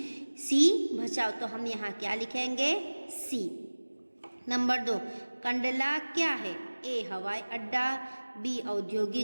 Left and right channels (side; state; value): both; inverted; correlation -1.00